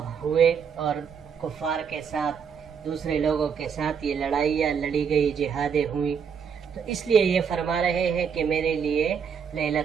ہوئے اور کفار کے ساتھ، دوسرے لوگوں کے ساتھ یہ لڑائیاں لڑی گئی، جہادیں ہوئی. تو اس لیے یہ فرما رہے ہیں کہ میرے لیے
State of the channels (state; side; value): quieter; left; 6.8 dB